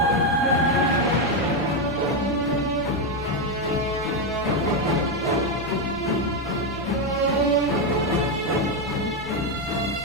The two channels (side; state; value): right; noise; rumble, 19 dB below the sound